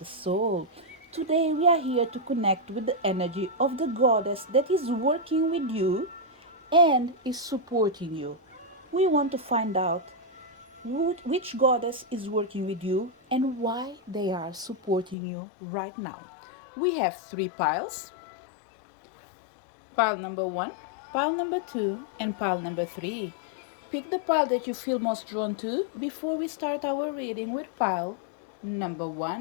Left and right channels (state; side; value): drops out; right; at 15.2 s